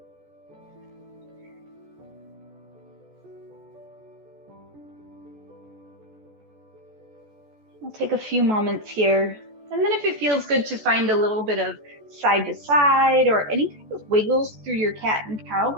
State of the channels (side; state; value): left; late; 14 ms